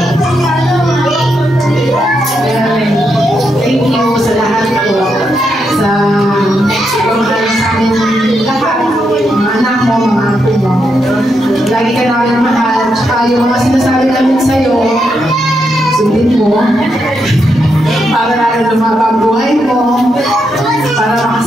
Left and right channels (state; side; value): normal; both; correlation 0.82